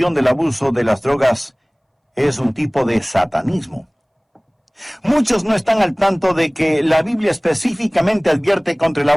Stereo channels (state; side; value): identical; both; correlation 1.00